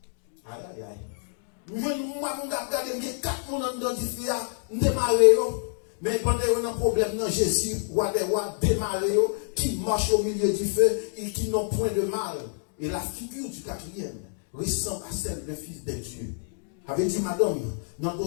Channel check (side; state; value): right; silent; digital silence